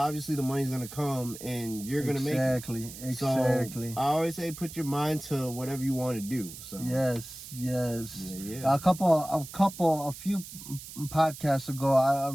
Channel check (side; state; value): right; noise; hiss, 13 dB below the sound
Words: the money's gonna come and you're gonna make it. Exactly. So I always say put your mind to whatever you want to do. So yes. Yeah. A few podcasts ago, I